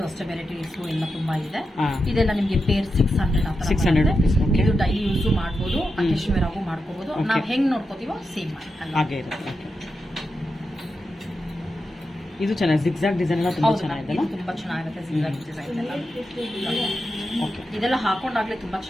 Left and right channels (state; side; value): normal; both; correlation 0.88